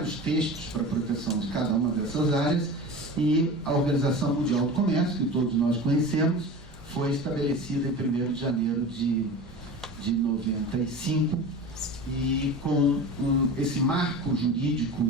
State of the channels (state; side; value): normal; both; correlation 0.33